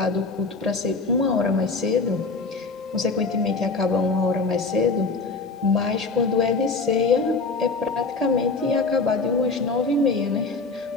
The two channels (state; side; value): quieter; right; 4.0 dB